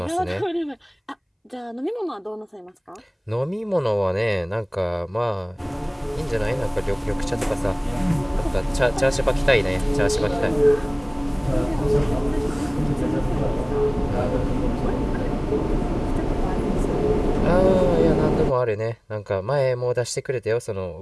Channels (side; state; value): both; identical; correlation 1.00